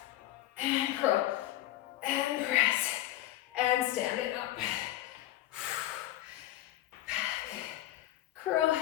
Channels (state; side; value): quieter; right; 14.4 dB